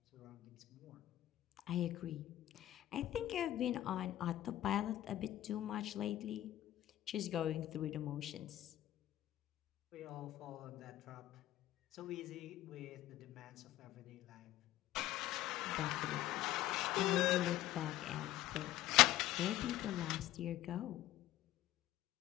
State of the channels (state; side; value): quieter; right; 14.2 dB